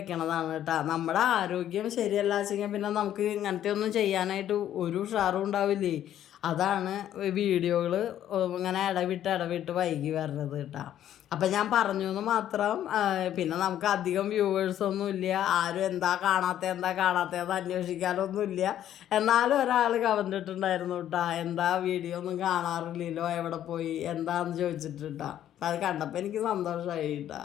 കേട്ടോ. നമ്മുടെ ആരോഗ്യം ശരിയല്ല വെച്ചെങ്കിൽ പിന്നെ നമുക്ക് ഇങ്ങനത്തെ ഒന്നും ചെയ്യാനായിട്ട് ഒരു ഉഷാറും ഉണ്ടാവില്ലേ. അതാണ് വീഡിയോകൾ ഇങ്ങനെ ഇടവിട്ട് വൈകി വരുന്നത് കേട്ടോ. അപ്പം ഞാൻ പറഞ്ഞു എന്ന് മാത്രം. പിന്നെ നമുക്ക് അധികം വ്യൂവേഴ്സൊന്നും ഇല്ല. ആരും എന്താ കാണാത്തതെന്ന് അന്വേഷിക്കാനൊന്നുമില്ല. എന്നാലും ഒരാൾ കമൻ്റ് ഇട്ടിട്ടുണ്ടായിരുന്നു കേട്ടോ, എന്താ വീഡിയോ ഒന്നും കാണാറില്ലല്ലോ, എവിടെ പോയി എന്താന്ന് ചോദിച്ചിട്ട് കേട്ടോ. അത് കണ്ടപ്പോൾ എനിക്ക് സന്തോഷമായി കേട്ടോ.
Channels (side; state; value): right; quieter; 11.3 dB